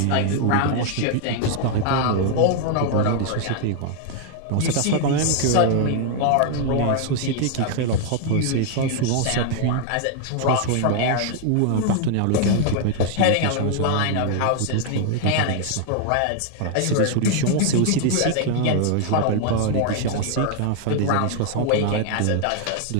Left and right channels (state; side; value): different; both; correlation 0.00